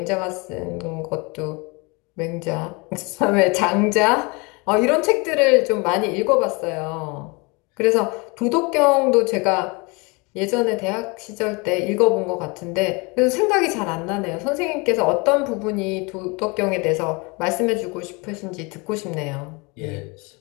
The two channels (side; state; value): right; quieter; 28.5 dB